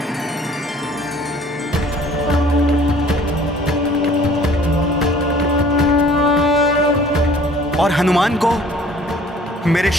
और हनुमान को मेरे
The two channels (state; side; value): normal; both; correlation 0.52